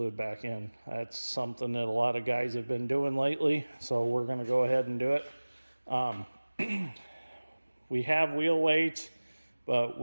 back in. That's something that a lot of guys have been doing lately, so we're going to go ahead and do it. We have wheel weights, but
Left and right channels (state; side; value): inverted; both; correlation -1.00